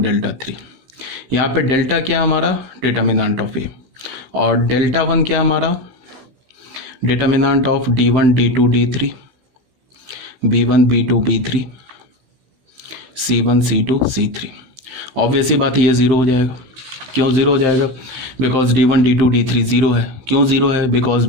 three. यहाँ पे डेल्टा क्या हमारा? डिटर्मिनेंट ऑफ ए, और डेल्टा वन क्या हमारा? Determinant of D one D two D three, B one B two B three, C one C two C three. Obviously बात है ये ज़ीरो हो जाएगा। क्यों ज़ीरो हो जाएगा? Because D one D two D three zero है। क्यों ज़ीरो है? बिकॉज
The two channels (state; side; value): late; left; 15 ms